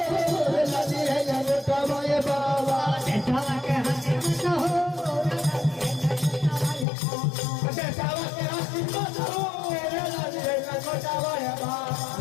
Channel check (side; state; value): right; drops out; at 6.9 s